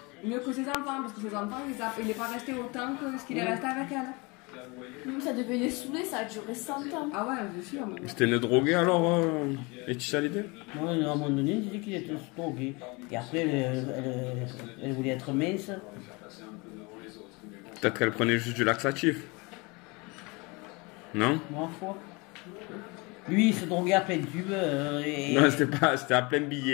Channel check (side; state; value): right; quieter; 27.2 dB